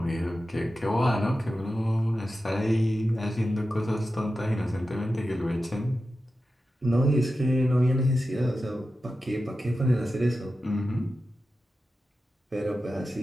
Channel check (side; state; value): both; normal; correlation 0.92